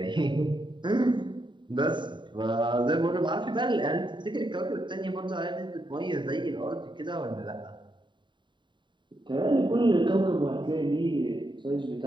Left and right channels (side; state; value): left; late; 0.23 ms